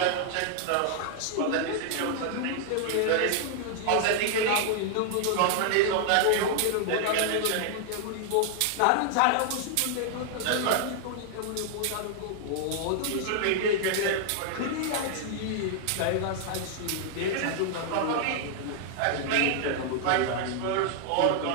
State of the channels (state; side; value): different; both; correlation 0.00